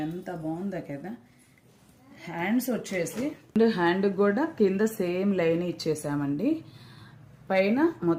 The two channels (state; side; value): identical; both; correlation 1.00